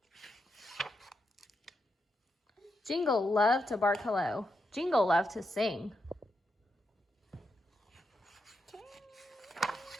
Jingle loved to bark hello. Jingle loved to sing.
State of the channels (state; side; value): normal; both; correlation 0.84